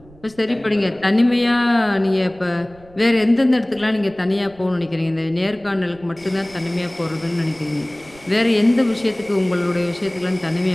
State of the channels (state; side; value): noise; right; rumble, 25 dB below the sound